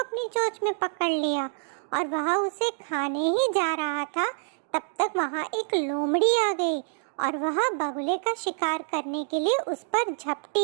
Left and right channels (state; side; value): silent; left; 60 dB below the other